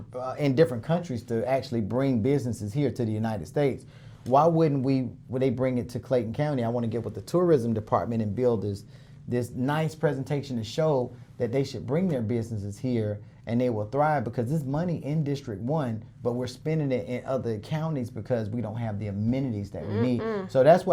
in different countries to actually bring businesses here to the United States. Why wouldn't they bring it to Clayton County? I want to get with the tourism department and build this nice presentation to show that they should bring their businesses here and they will thrive, because there's money in District 1, but we're spending it in other counties because we don't have the amenities that we need. So that's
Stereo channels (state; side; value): identical; both; correlation 1.00